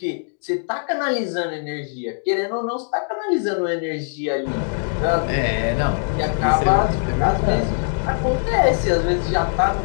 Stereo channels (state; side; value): silent; right; digital silence